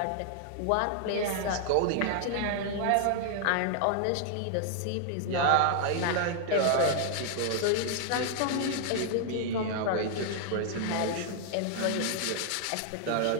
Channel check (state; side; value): different; both; correlation 0.00